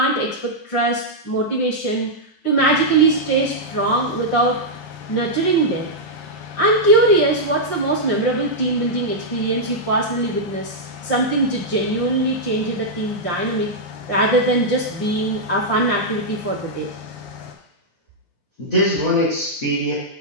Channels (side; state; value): right; late; 9.9 ms